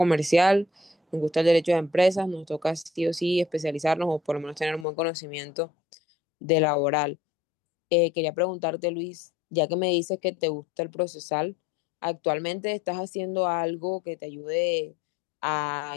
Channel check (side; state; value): right; drops out; at 4.9 s